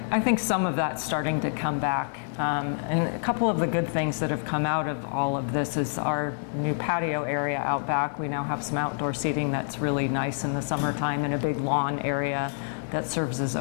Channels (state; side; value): silent; right; digital silence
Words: think some of that's starting to come back. And a couple of the good things that have come out of all of this is our new patio area out back. We now have some outdoor seating that's really nice in the summertime, and a big lawn area that serves as